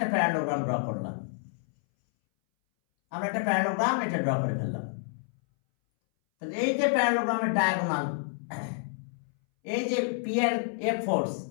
প্যারালোগ্রাম ড্র করলাম, আমরা একটা প্যারালোগ্রাম এটা ড্র করে ফেললাম। তাহলে এই যে প্যারালোগ্রামের ডায়াগোনাল, এই যে পি এর এফ ফোর্স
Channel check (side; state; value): right; silent; 59 dB below the other